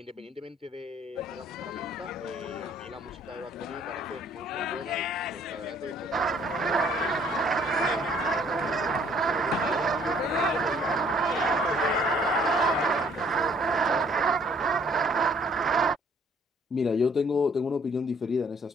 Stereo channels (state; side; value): normal; both; correlation 0.61